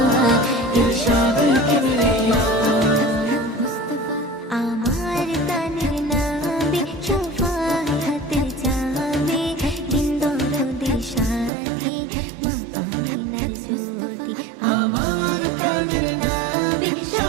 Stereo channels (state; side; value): drops out; left; at 11.5 s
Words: ইরশাদে কিবরিয়া আমার তানের নামে শফায়াতের চাবি দিন দরদের সাথী মা আমিনার জ্যোতি আমার তানের নামে